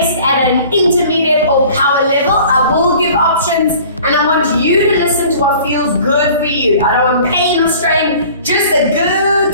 at an intermediate or power level. I will give options and I want you to listen to what feels good for you. I don't want pain or strain, just a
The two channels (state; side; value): inverted; both; correlation -0.48